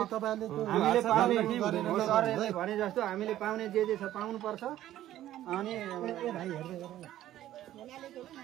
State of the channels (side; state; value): left; quieter; 13.2 dB